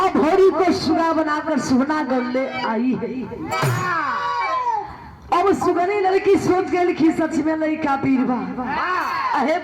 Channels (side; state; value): both; identical; correlation 1.00